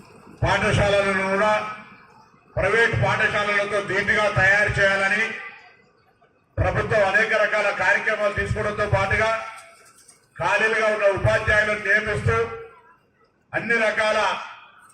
పాఠశాలలను కూడా ప్రైవేట్ పాఠశాలలతో ధీటుగా తయారు చేయాలని ప్రభుత్వం అనేక రకాల కార్యక్రమాలు తీసుకోవడంతో పాటుగా ఖాళీలుగా ఉన్న ఉపాధ్యాయులను నియమిస్తూ అన్ని రకాల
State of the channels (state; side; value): identical; both; correlation 1.00